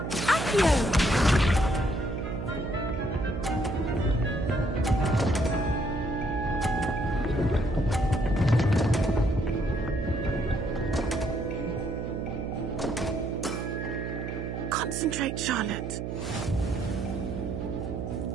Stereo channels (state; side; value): noise; right; hum, 4 dB below the sound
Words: Accio! Concentrate, Charlotte.